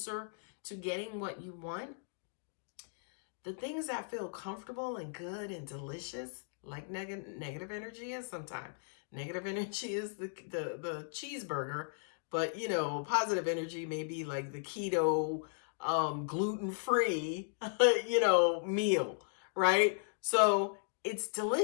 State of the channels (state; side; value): silent; right; digital silence